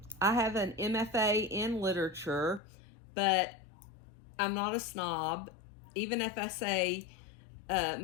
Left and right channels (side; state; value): right; drops out; at 2.6 s